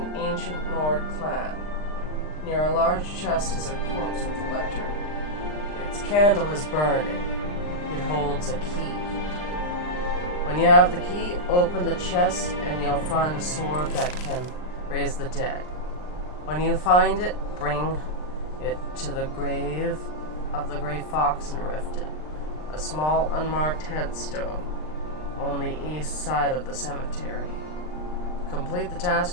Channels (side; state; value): right; late; 39 ms